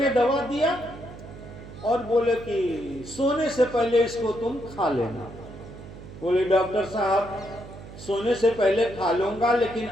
दवा दिया और बोले कि सोने से पहले इसको तुम खा लेना। बोले डॉक्टर साहब सोने से पहले खा लूंगा लेकिन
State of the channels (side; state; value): right; noise; hum, 15 dB below the sound